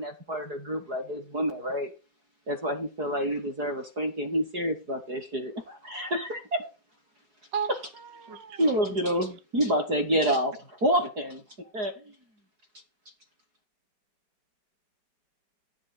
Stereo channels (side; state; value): left; late; 4.7 ms